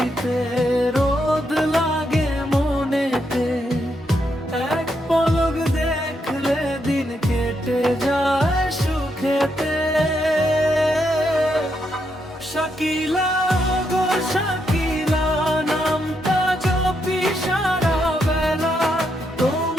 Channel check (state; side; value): normal; both; correlation 0.80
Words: রোদ লাগে মনেতে, এক পলক দেখলে দিন কেটে যায় সুখেতে। শাকিলা গো শাকিলা, নামটা জপি সারা বেলা,